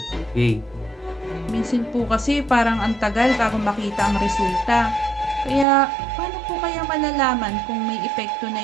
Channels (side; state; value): left; drops out; at 5.7 s